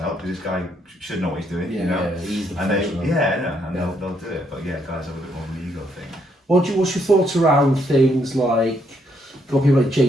help because this guy should know what he's doing, Yeah, you know. yeah, he's the And they, professional. and Yeah. they'll do it, but yeah, guys have a bit more of an ego thing. What's your thoughts around things like, got people like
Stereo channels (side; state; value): both; normal; correlation 0.73